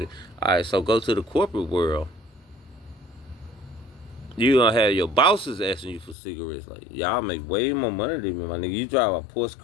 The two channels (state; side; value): drops out; right; at 6.2 s